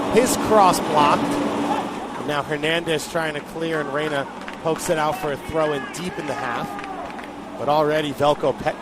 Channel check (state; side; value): identical; both; correlation 1.00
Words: His cross blocked. And now Hernandez trying to clear, and Reyna pokes it out for a throw in deep in the half. But already Velko